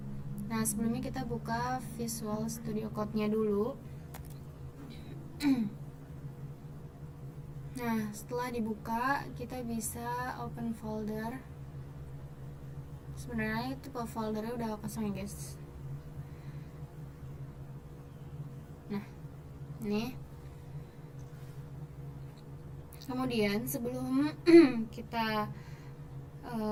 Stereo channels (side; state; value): both; identical; correlation 1.00